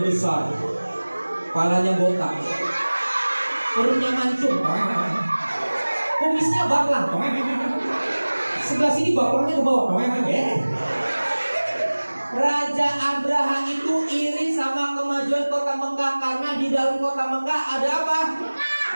besar, kepalanya botak, perutnya mancung, kumisnya baklang, sebelah sini baklangnya ke bawah. Raja Abraham itu iri sama kemajuan kota Mekah, karena di dalam kota Mekah ada apa?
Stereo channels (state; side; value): inverted; both; correlation -1.00